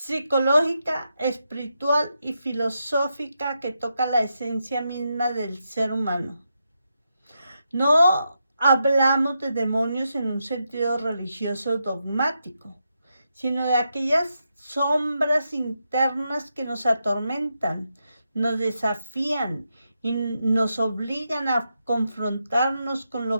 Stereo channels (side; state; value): both; inverted; correlation -0.84